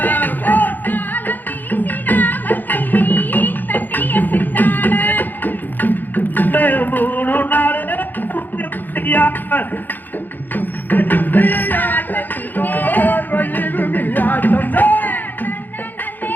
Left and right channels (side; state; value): right; late; 0.087 ms